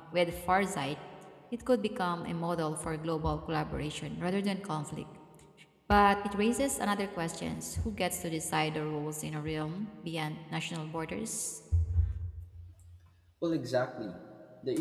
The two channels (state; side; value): identical; both; correlation 1.00